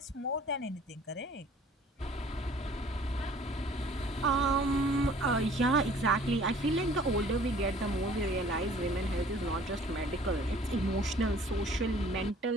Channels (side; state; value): both; normal; correlation 0.53